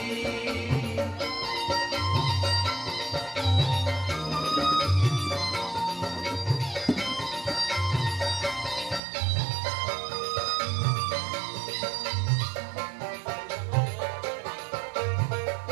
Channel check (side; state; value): left; drops out; at 9.0 s